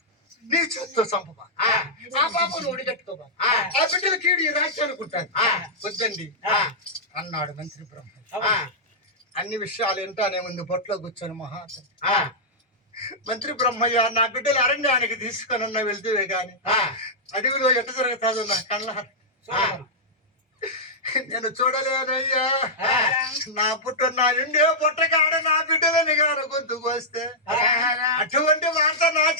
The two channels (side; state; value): both; normal; correlation -0.09